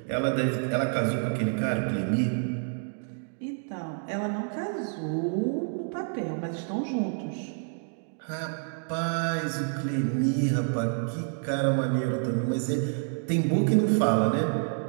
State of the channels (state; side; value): silent; left; 59 dB below the other